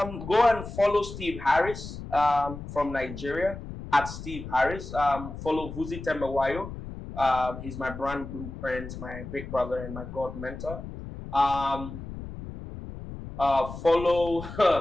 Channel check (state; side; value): noise; left; rumble, 10 dB below the sound